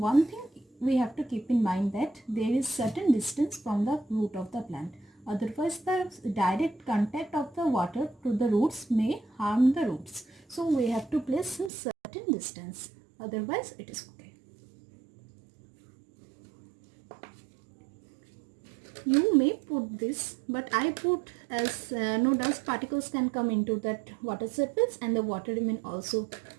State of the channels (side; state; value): left; drops out; at 11.7 s